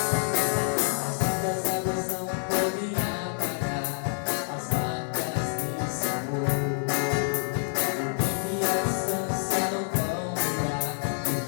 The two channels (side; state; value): right; silent; digital silence